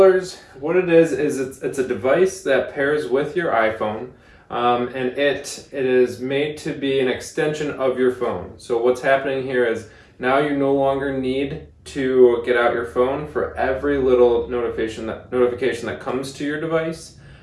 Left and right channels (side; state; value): both; identical; correlation 1.00